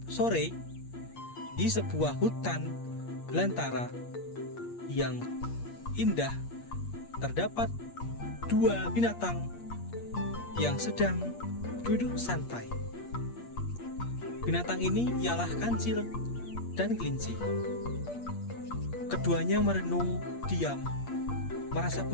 sore, di sebuah hutan belantara yang indah, terdapat dua binatang yang sedang duduk santai. Binatang ini ialah kancil dan kelinci. Keduanya merenung diam, merasa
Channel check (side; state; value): right; late; 8.5 ms